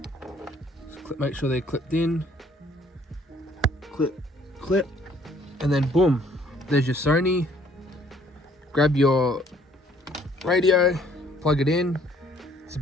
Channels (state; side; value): normal; both; correlation 0.61